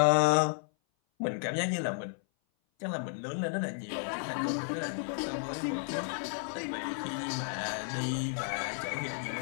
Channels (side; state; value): right; silent; 56 dB below the other